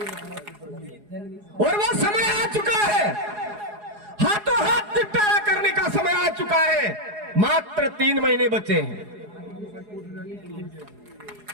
और वो समय आ चुका है, हाथों हाथ निपटारा करने का समय आ चुका है। मात्र 3 महीने बचे हैं,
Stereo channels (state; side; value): late; left; 4.8 ms